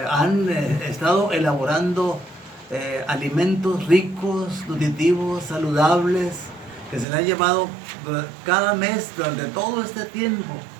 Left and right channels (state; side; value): drops out; left; at 7.1 s